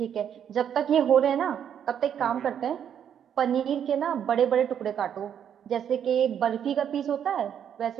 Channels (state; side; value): quieter; left; 8.9 dB